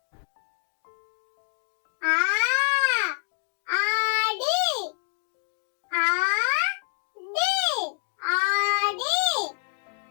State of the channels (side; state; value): right; silent; digital silence